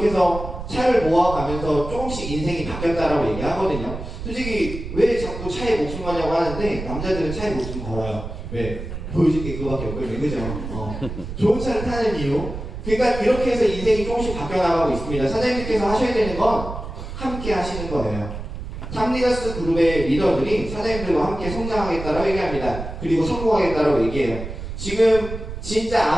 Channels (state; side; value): noise; right; rumble, 8 dB below the sound